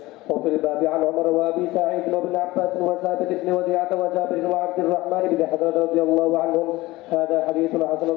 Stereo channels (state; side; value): quieter; right; 19.2 dB